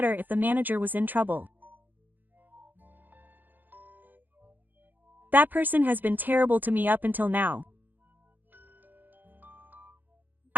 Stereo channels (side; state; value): left; late; 0.087 ms